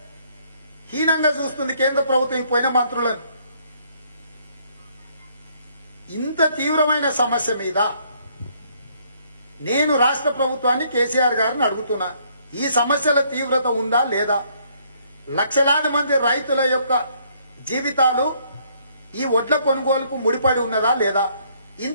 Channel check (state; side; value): inverted; both; correlation -0.66